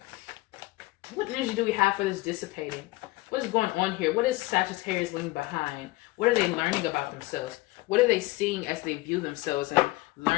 What energy do we have for this dissipating? What is going on here? What is Sagittarius leaving behind? What are they learning about themselves? What are they seeing as they view themselves and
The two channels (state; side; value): quieter; right; 20.3 dB